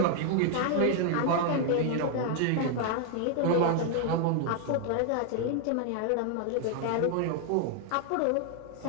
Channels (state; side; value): different; both; correlation 0.00